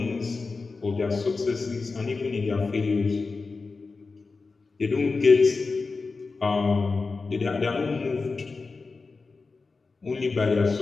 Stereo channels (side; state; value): right; quieter; 4.1 dB